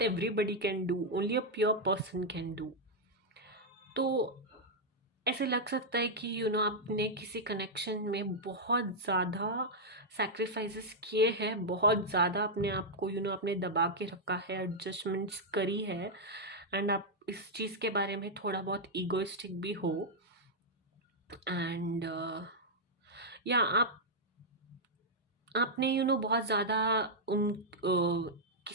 can do, only a pure person can do। तो ऐसे लग सकता है कि आपने किसी कनेक्शन में बहुत ज़्यादा सैक्रिफाइसेस किए हैं, बहुत ज़्यादा अपने आप को आपने दबा के रखा है, एडजस्टमेंट्स करी है, एंड आप इस चीज़ के बारे में थोड़ा बहुत ईगोइस्टिक भी हो। एंड या आपने बहुत ज़्यादा उन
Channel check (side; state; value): both; normal; correlation -0.04